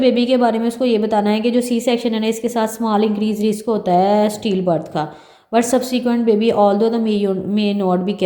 के बारे में उसको ये बताना है कि जो सी सेक्शन है ना इसके साथ स्मॉल इंक्रीज रिस्क होता है स्टील बर्थ का, but subsequent baby although the may not be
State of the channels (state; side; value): identical; both; correlation 1.00